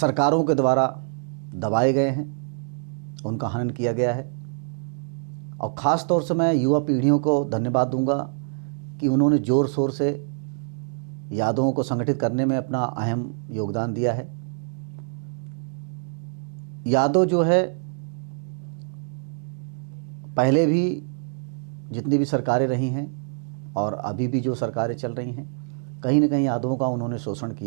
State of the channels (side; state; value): left; silent; digital silence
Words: के द्वारा दबाए गए हैं, उनका हनन किया गया है। और ख़ास तौर से मैं युवा पीढ़ियों को धन्यवाद दूंगा कि उन्होंने ज़ोर शोर से यादवों को संगठित करने में अपना अहम योगदान दिया है। यादव जो है पहले भी जितनी भी सरकारें रही हैं और अभी भी जो सरकारें चल रही हैं, कहीं न कहीं यादवों का उन्होंने शोषण